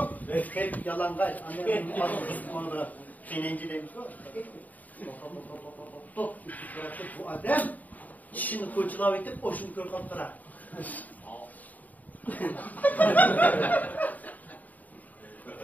hep yalangay. Annemin adı hinenci demiş o. Bu adam, şimdi koyucular vakti, oşun kör kaptıra.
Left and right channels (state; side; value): late; right; 0.078 ms